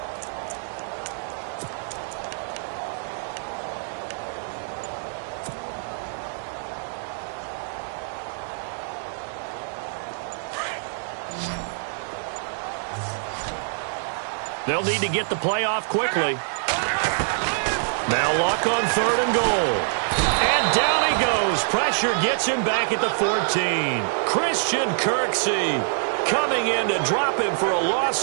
They'll need to get the play off quickly. Now Luck on 3rd and goal. And down he goes. Pressure gets him back at the 14. Christian Kirksey coming in to drop him for a loss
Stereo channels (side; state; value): left; silent; digital silence